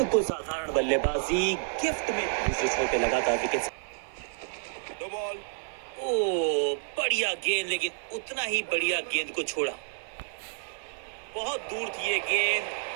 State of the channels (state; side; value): silent; left; digital silence